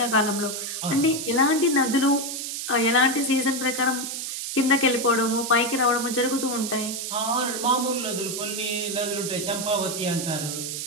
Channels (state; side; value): noise; right; hiss, 5 dB below the sound